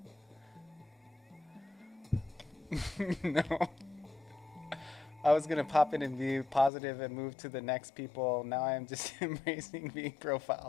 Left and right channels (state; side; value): drops out; right; at 6.7 s